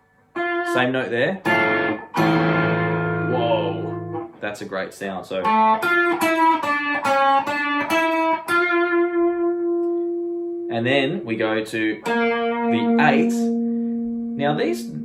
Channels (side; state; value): both; identical; correlation 1.00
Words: Same note there. Whoa, that's a great sound. So, and then we go to the 8. Now